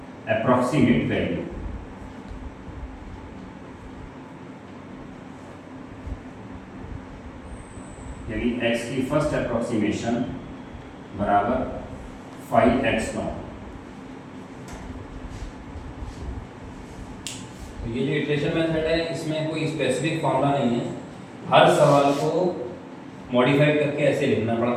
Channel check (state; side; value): identical; both; correlation 1.00